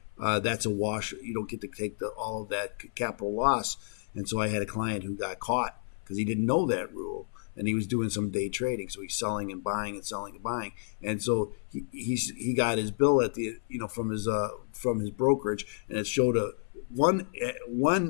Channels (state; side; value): silent; right; 57 dB below the other